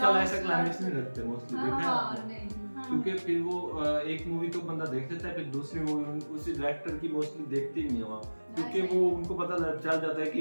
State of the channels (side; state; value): both; inverted; correlation -1.00